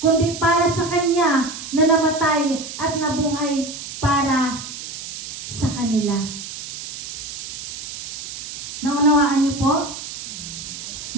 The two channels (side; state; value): right; noise; hiss, 10 dB below the sound